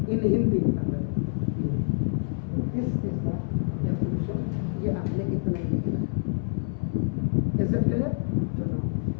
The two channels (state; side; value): silent; right; 60 dB below the other